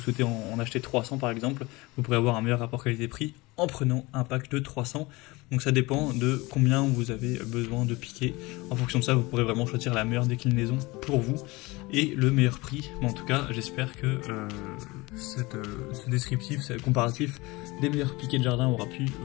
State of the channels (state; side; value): quieter; right; 22.8 dB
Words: souhaitez en acheter 300 par exemple, vous pourrez avoir un meilleur rapport qualité-prix en prenant un pack de 300. Donc ça dépend de combien vous avez besoin de piquets. En fonction de ça vous pourrez vraiment choisir la meilleure déclinaison pour vous et le meilleur prix. Mais en tout cas j'espère que ce descriptif, ce comparatif des meilleurs piquets de jardin aura pu